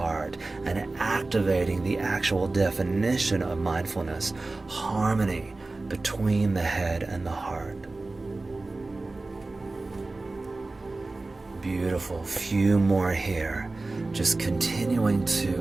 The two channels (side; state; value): left; quieter; 3.3 dB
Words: and activating the actual definition of mindfulness, harmony between the head and the heart. Beautiful. Few more here. Just continuing